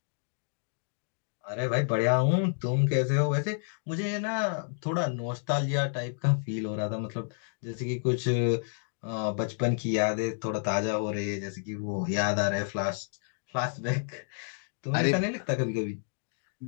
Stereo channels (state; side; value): silent; right; digital silence